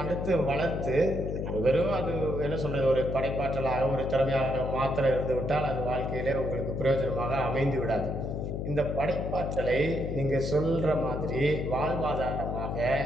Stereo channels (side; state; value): left; noise; hum, 3 dB below the sound